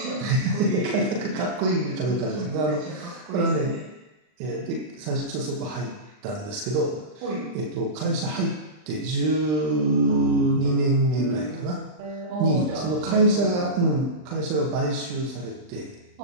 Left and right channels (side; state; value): left; late; 39 ms